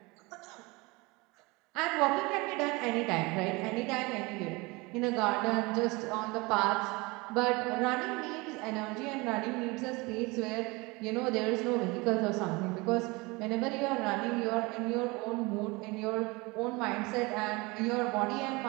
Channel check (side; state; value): left; quieter; 24.9 dB